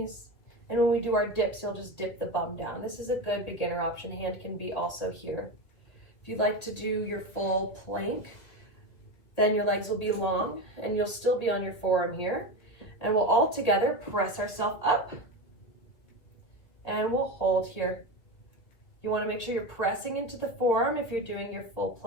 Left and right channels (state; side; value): late; right; 2.2 ms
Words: And when we do our dips, you'll just dip the bum down. This is a good beginner option. Hand can be also here. If you'd like to do your full plank, then your legs will be long and you'll still be on your forearm here. And we'll all together press ourselves up and we'll hold here. You want to make sure you're pressing into the forearm if you're doing your full